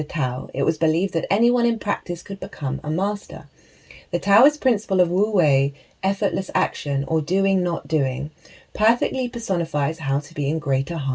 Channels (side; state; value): both; identical; correlation 1.00